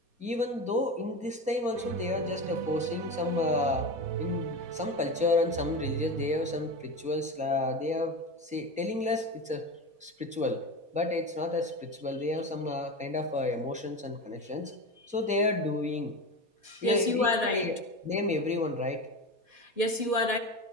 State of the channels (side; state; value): left; late; 4.2 ms